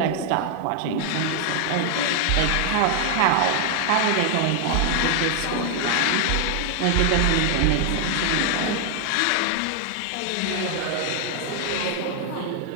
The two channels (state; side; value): different; both; correlation 0.00